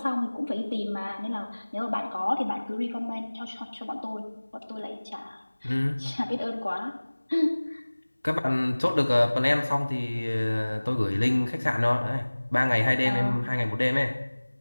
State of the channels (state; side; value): inverted; both; correlation -1.00